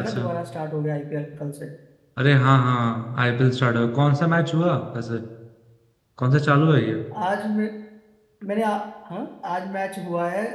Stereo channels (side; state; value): both; identical; correlation 1.00